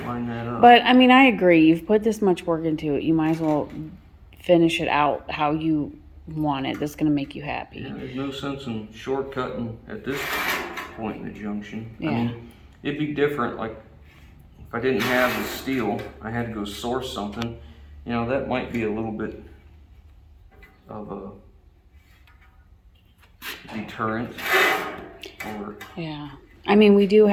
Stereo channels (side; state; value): both; identical; correlation 1.00